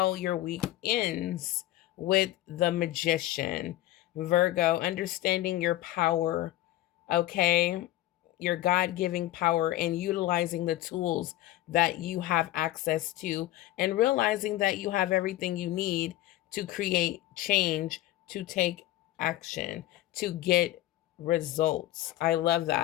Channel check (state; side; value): quieter; right; 15.0 dB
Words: your week ends with the Magician. Virgo, understanding your power, okay? Your God-giving power and utilizing the tools that you have access to and realizing that you have everything you need to create change, to take action, to get results. I love